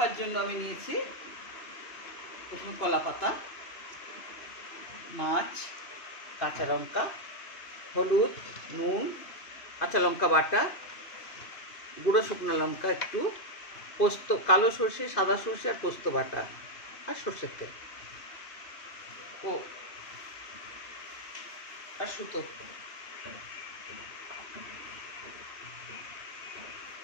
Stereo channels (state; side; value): late; right; 2.5 ms